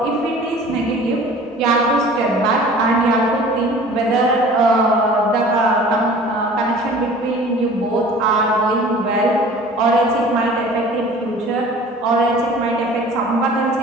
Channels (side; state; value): both; normal; correlation 0.45